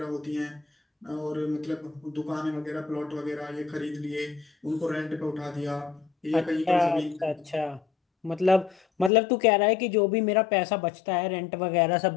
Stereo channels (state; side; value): drops out; right; at 9.1 s